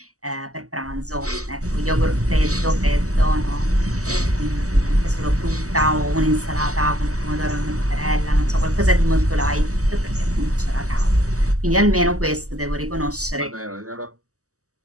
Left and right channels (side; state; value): left; late; 0.66 ms